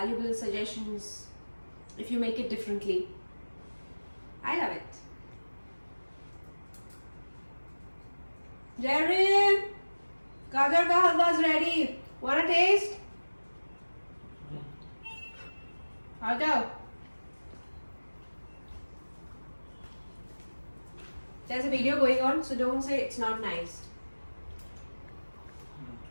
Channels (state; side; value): inverted; both; correlation -1.00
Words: suggestions if you make it differently. I love it. Jerry, Gaajar ka halwa is ready. Wanna taste? I'll go. There's a video going on, so don't say it's not nice.